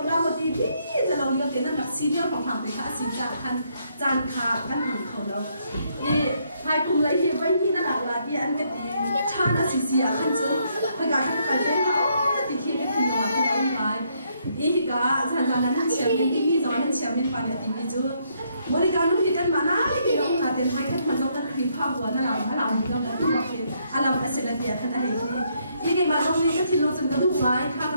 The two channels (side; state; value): both; inverted; correlation -0.73